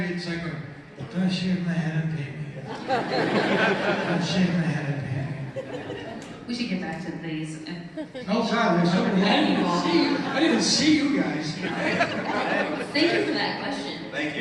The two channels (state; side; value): identical; both; correlation 1.00